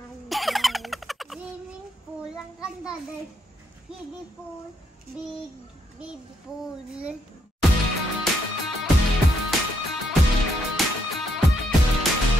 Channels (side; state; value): both; normal; correlation 0.75